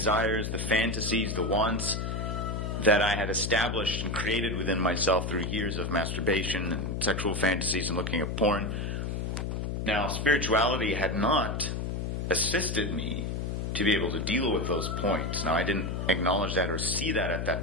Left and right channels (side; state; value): left; noise; hum, 2 dB below the sound